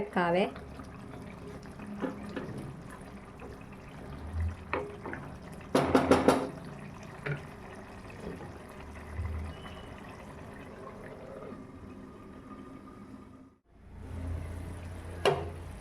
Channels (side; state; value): both; identical; correlation 1.00